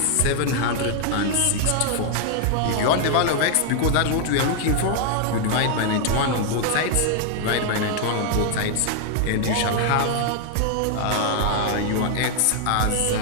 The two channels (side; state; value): both; different; correlation 0.00